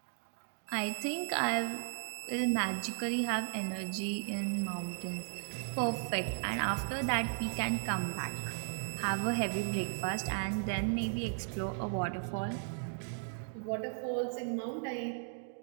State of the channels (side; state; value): left; silent; digital silence